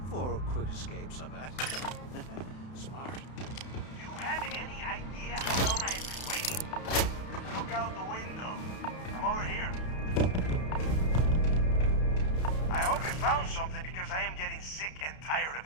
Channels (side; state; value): right; late; 32 ms